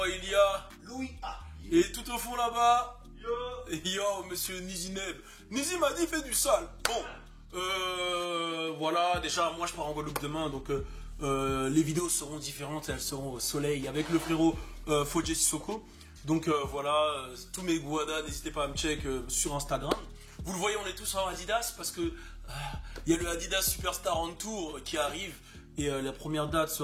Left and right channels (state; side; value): identical; both; correlation 1.00